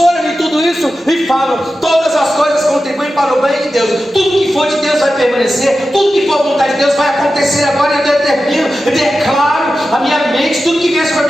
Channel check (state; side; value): normal; both; correlation 0.92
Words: em tudo isso e falo: todas as coisas contribuem para o bem de Deus, tudo que for de Deus vai permanecer, tudo que for a vontade de Deus vai acontecer agora. Eu determino, eu declaro a minha mente, tudo que vier sobre